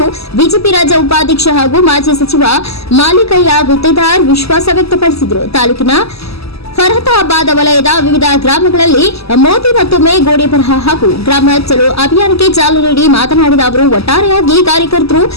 ಬಿಜೆಪಿ ರಾಜ್ಯ ಉಪಾಧ್ಯಕ್ಷ ಹಾಗೂ ಮಾಜಿ ಸಚಿವ ಮಾಲಿಕೆಯಾಗುತ್ತಿದ್ದಾರೆ ವಿಶ್ವಾಸ ವ್ಯಕ್ತಪಡಿಸಿದರು. ತಾಲೂಕಿನ ಫರತಾಬಾದ್ ವಲಯದ ವಿವಿಧ ಗ್ರಾಮಗಳಲ್ಲಿ ಮೋದಿ ಮತ್ತೊಮ್ಮೆ ಗೋಡೆ ಬರಹ ಹಾಗೂ ಗ್ರಾಮ ಚಲೋ ಅಭಿಯಾನಕ್ಕೆ ಚಾಲನೆ ನೀಡಿ ಮಾತನಾಡಿದ ಅವರು, ಒಟ್ಟಾರೆಯಾಗಿ ಕಾರ್ಯಕರ್ತರು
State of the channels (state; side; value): late; right; 0.78 ms